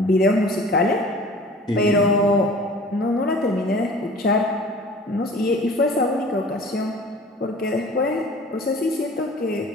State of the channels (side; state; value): both; normal; correlation 0.45